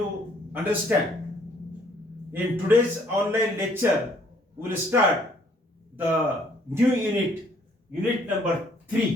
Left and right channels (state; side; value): normal; both; correlation 0.63